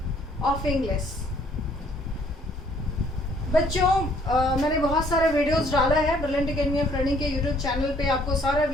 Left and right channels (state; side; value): normal; both; correlation 0.62